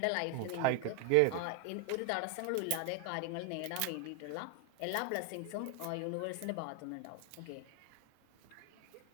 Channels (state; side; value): different; both; correlation 0.01